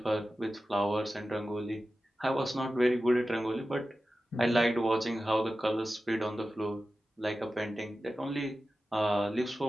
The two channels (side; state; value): both; normal; correlation 0.94